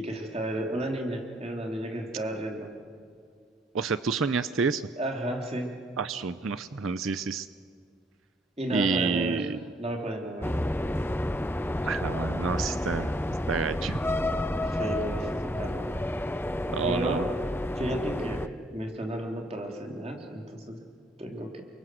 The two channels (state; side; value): normal; both; correlation 0.66